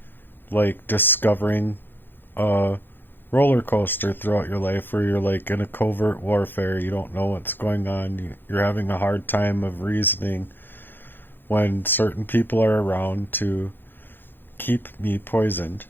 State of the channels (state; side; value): late; right; 0.097 ms